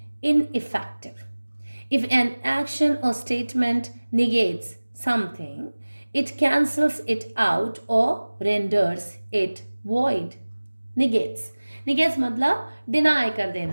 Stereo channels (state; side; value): inverted; both; correlation -1.00